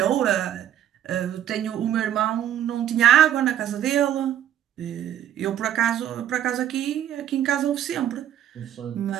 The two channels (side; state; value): left; quieter; 10.9 dB